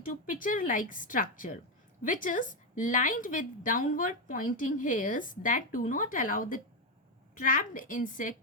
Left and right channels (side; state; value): both; normal; correlation 0.06